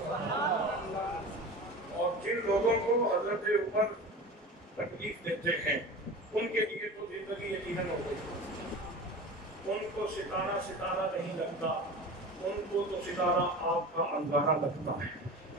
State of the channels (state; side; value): normal; both; correlation 0.34